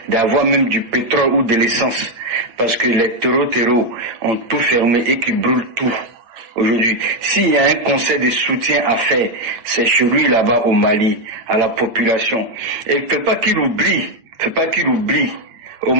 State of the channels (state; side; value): late; left; 8.9 ms